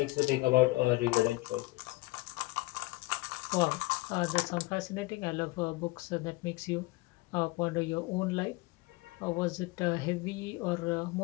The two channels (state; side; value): quieter; right; 21.6 dB